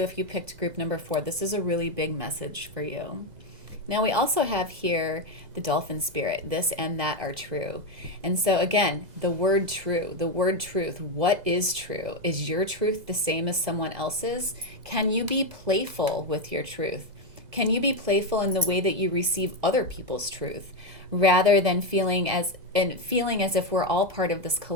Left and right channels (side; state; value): left; late; 2.0 ms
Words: if you picked group number 4, this is a really big message for you. Now, we also have here the dolphin spirit. This and that are true. And so, again, the word true, the word truth. What is true? Is your truth the same as someone else's? Can you be playful with your truth? Can you be playful in the way that you receive other people's truth, rather than feeling as if we're all part of this